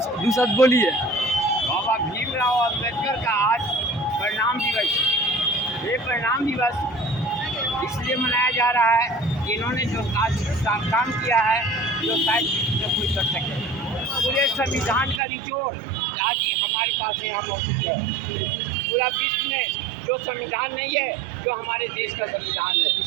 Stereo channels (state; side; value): drops out; left; at 15.2 s